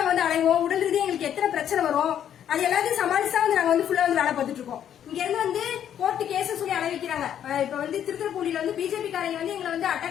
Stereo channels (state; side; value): quieter; right; 9.8 dB